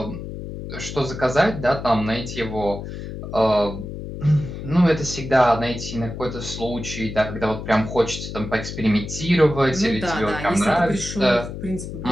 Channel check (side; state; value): left; noise; hum, 8 dB below the sound